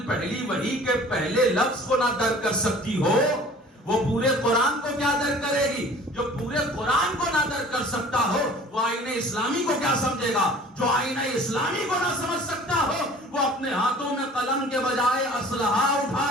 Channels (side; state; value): both; normal; correlation 0.47